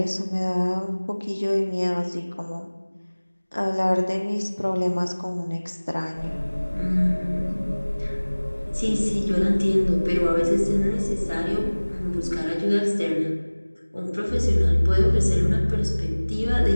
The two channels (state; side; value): inverted; both; correlation -1.00